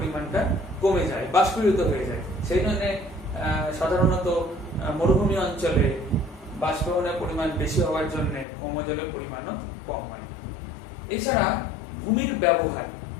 কমে যায়, বাষ্পীভূত হয়ে যায়। সেই জন্য সাধারণত মরুভূমি অঞ্চলে বাষ্পীভবনের পরিমাণ বেশি হওয়ার জন্য ভৌমজলের পরিমাণও কম হয়। এছাড়া ভূমির ব্যবহার,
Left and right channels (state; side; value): drops out; right; at 8.5 s